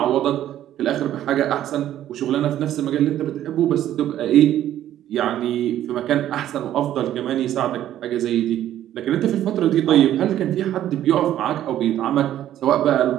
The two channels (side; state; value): left; quieter; 12.1 dB